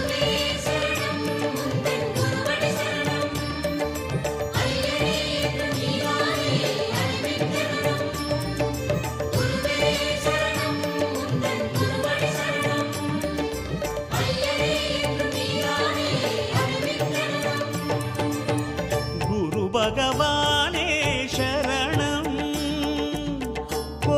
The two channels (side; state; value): both; identical; correlation 1.00